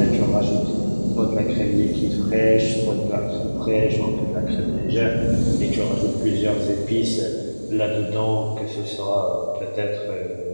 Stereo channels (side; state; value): both; inverted; correlation -1.00